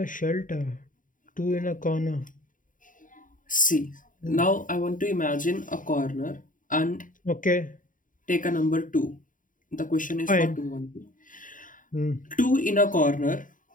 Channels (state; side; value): late; right; 0.39 ms